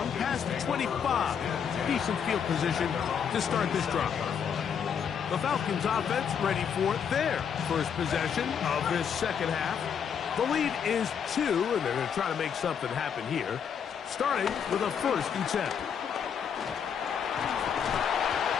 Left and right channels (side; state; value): right; quieter; 7.5 dB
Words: past the 25. Decent field position to start this drive. The Falcons offense ready for their first possession of this second half. The lead is 2, and they're going to try to make something happen here, starting with a first and 10.